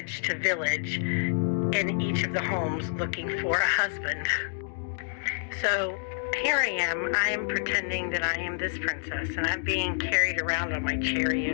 to village, in each of the homes looking for a husband. So here I am pretending that I am this princess, and I'm being carried around on my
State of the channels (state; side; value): silent; right; digital silence